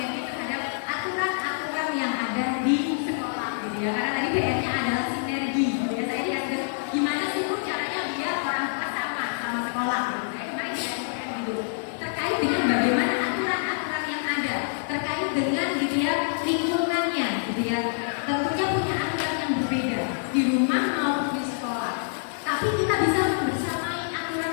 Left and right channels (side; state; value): right; silent; digital silence